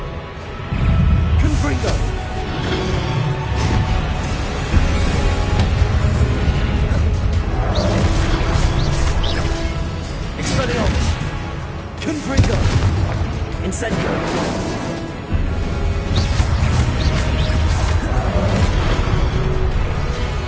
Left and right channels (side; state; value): both; identical; correlation 1.00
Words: Confringo. Expelliarmus. Confringo. Incendio.